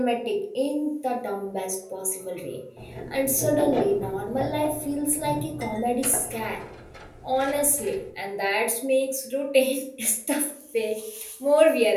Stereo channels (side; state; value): both; identical; correlation 1.00